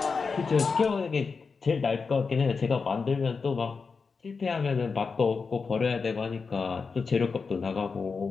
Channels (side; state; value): right; quieter; 4.9 dB